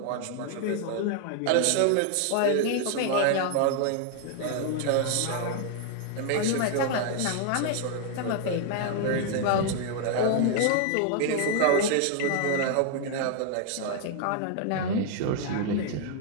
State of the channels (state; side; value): different; both; correlation 0.00